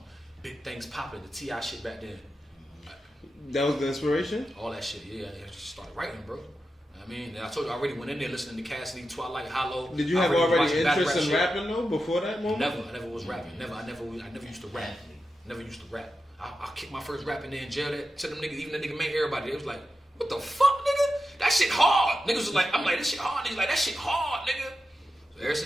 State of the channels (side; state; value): both; normal; correlation 0.90